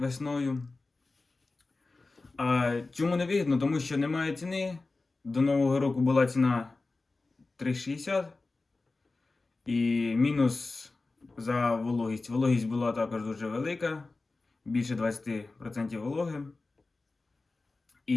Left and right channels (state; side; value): quieter; right; 3.5 dB